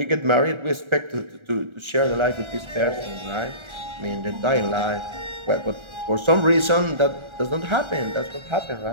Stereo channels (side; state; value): left; late; 1.4 ms